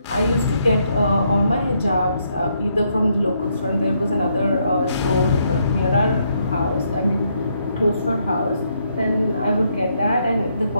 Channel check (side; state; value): both; inverted; correlation -0.75